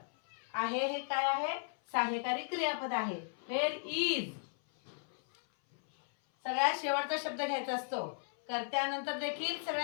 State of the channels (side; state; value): right; silent; 54 dB below the other